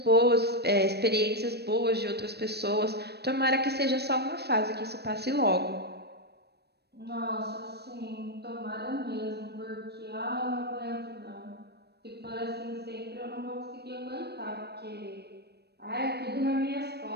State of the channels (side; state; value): left; late; 0.47 ms